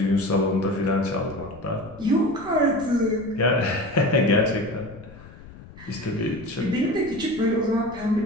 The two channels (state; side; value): noise; left; rumble, 18 dB below the sound